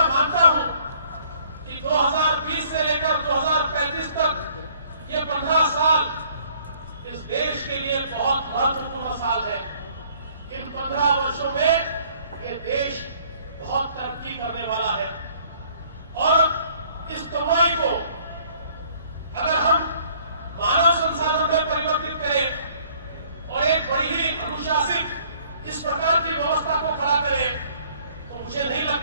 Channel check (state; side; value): inverted; both; correlation -0.59